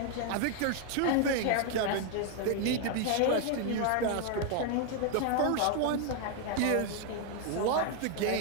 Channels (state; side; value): different; both; correlation 0.00